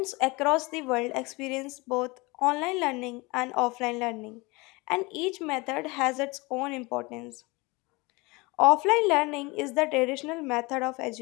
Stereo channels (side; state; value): right; quieter; 25.0 dB